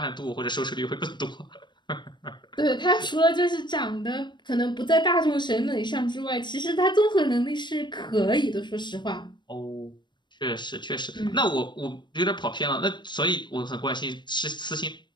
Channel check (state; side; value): late; right; 0.22 ms